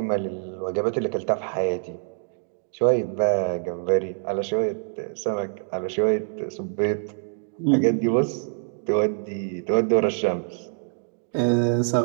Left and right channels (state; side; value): silent; left; digital silence